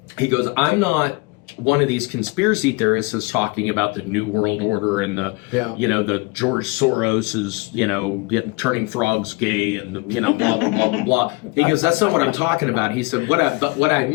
he goes, I'm not one of these conspiracy theorists is talking about the New World Order and the, the George Soros is, turning frogs gay and, blah, blah, blah, blah, blah. He goes, that's not what I'm talking about. He said, but what I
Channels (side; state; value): right; quieter; 26.4 dB